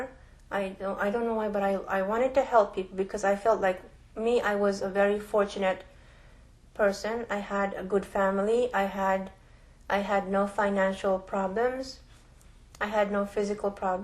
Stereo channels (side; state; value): both; identical; correlation 1.00